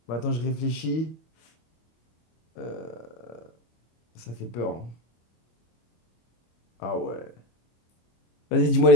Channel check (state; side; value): late; right; 25 ms